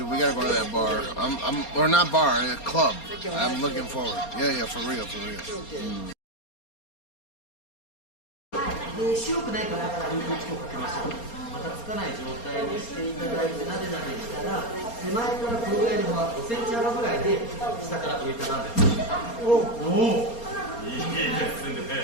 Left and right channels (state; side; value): late; right; 4.3 ms